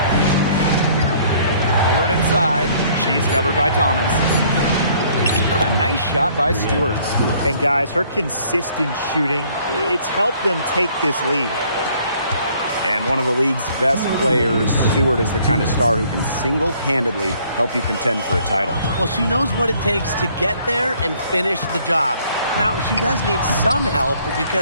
Stewart inside. She's covered by Thomas. A nice shot by Stewart. And guys, her consistent shooting, it's helped them take this lead. And one of the league's best players, Stewart, is the kind of star who can single-handedly help you contend for a title. Well, she knows what it takes to get there and finish the job. Now, she does need some help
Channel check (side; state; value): both; inverted; correlation -0.60